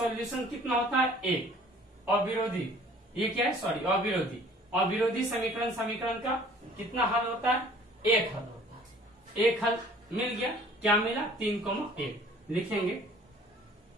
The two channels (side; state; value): both; normal; correlation 0.52